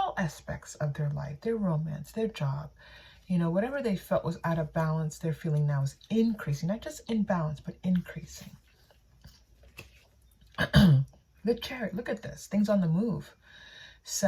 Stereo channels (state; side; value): identical; both; correlation 1.00